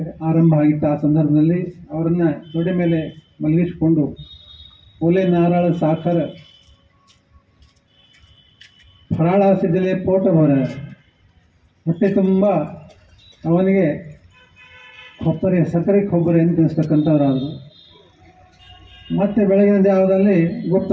ಆರಂಭ ಆಗಿತ್ತು. ಆ ಸಂದರ್ಭದಲ್ಲಿ ಅವರನ್ನು ತೊಡೆ ಮೇಲೆ ಮಲಗಿಸಿಕೊಂಡು ಒಲೆ, ನಾರಾಳ, ಸಾಖರ, ಫರಾಳಾಸಿದ್ದಲೇ ಪೋಟ ಹೊರ ಹೊಟ್ಟೆ ತುಂಬ ಅವನಿಗೆ ಸಕ್ಕರೆ ಕೊಬ್ಬರಿ ಅಂತ ತಿನ್ನಿಸ್ತಕ್ಕಂಥವರಾದರು. ಮತ್ತೆ ಬೆಳಗಿನ ಜಾವದಲ್ಲಿ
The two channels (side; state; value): both; identical; correlation 1.00